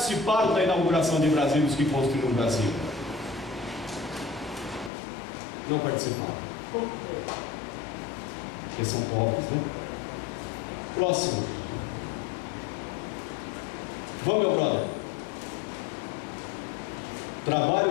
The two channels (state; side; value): drops out; right; at 4.9 s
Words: da inauguração de Brasília, os que construíram Brasília. Não participaram. Porque são pobres, né? Próximo. Vamos, meu brother.